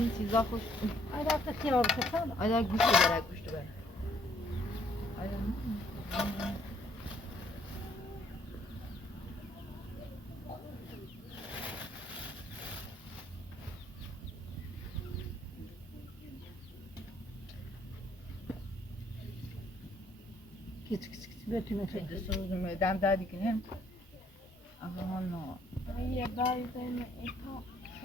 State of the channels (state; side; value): normal; both; correlation 0.65